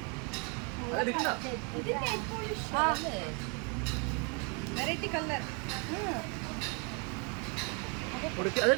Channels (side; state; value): left; quieter; 34.7 dB